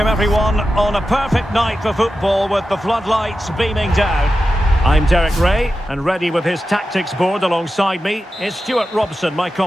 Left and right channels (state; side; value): normal; both; correlation 0.92